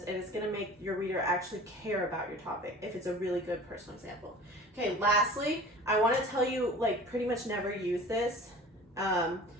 and it's going to make your reader actually care about your topic if it's a really good personal example. Okay, lastly, I want to tell you, like, pretty much never use this.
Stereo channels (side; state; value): both; normal; correlation 0.42